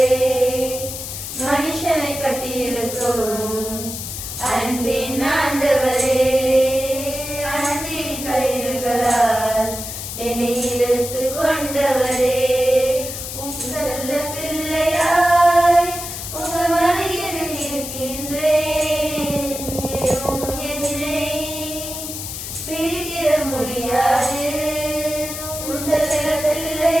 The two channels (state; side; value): noise; left; hiss, 7 dB below the sound